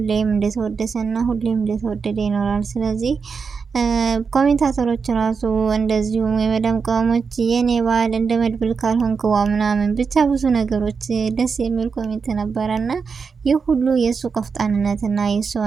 እንደተወደሰና ሁሌም እንደተወደደ ይኖራል። ስለዚህ ኮሜንታተሮች ራሱ እንደዚሁም የመዳም ቅመሞች የኔ ባል እንደ መድብል ካልሆንክዋ ምናምን ብቻ ብዙ ነገሮች ደስ የሚል ኮሜንት ነበረና ይህ ሁሉ የእሱ ቆፍጣንነትና የእሱ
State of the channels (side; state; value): left; quieter; 5.4 dB